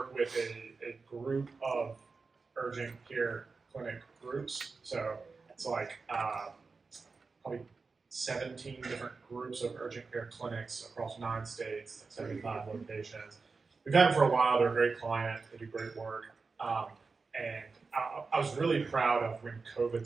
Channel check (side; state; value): left; quieter; 4.4 dB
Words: with a group of urgent care clinic groups. So it's like probably 17 different groups of urgent care clinics across 9 states, 75 locations. We've had them for a while. They're a great client. They do great work. And I was really proud of when COVID